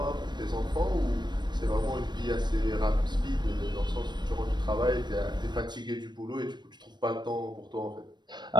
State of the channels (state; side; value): late; left; 0.21 ms